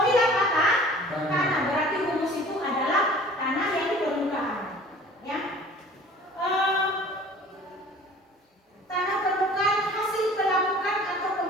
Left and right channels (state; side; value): normal; both; correlation 0.46